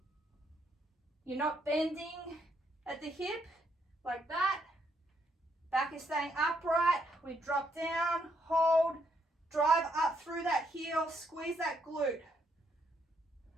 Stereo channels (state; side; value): normal; both; correlation 0.74